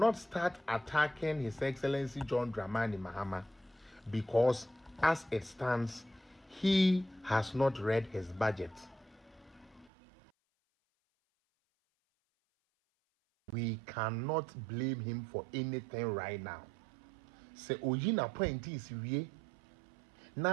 start attacking His Excellency John Dramani Mahama because as it stands, he has not read his budget. We cannot blame him for anything right now. Say oyina point is wie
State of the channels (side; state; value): left; drops out; at 9.9 s